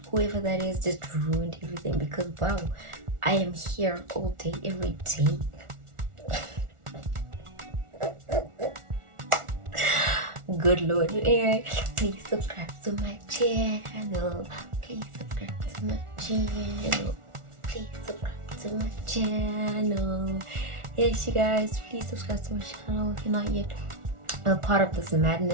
whoever that is just ruined everything, because wow, I am here all day, every day. Good Lord. Anyway, please subscribe to my channel. Please subscribe to my channel. Please subscribe to my channel. Yes, you guys, please subscribe to my channel if you're not yet a part of this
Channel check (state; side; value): late; left; 1.4 ms